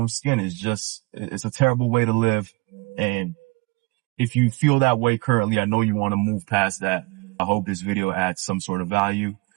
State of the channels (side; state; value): left; quieter; 26.6 dB